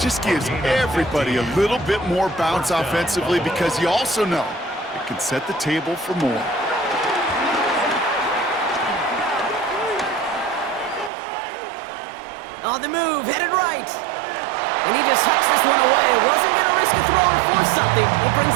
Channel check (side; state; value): left; drops out; at 11.1 s